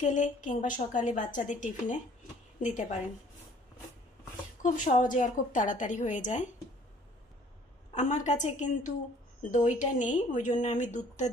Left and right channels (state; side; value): normal; both; correlation 0.56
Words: কিংবা সকালে বাচ্চাদের টিফিনে দিতে পারেন, খুব সহজে আর খুব তাড়াতাড়ি হয়ে যায়। আমার কাছে কিন্তু দইটা নেই, ওই জন্য আমি দুধটা